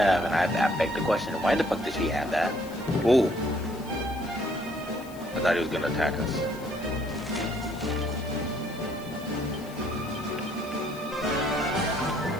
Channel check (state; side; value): noise; left; hiss, 20 dB below the sound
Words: and I beg the question, why the fuck did she have that? Ooh. I thought he was gonna attack us.